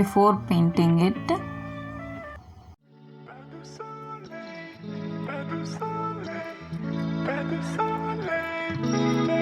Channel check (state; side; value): identical; both; correlation 1.00